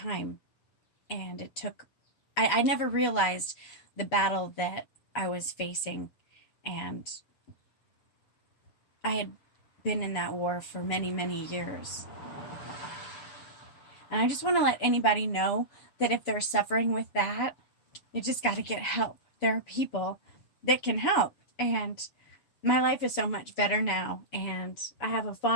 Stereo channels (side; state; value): right; late; 7.0 ms